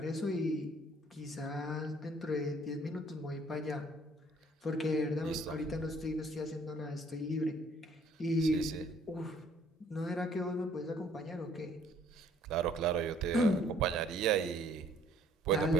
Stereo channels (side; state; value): both; normal; correlation 0.60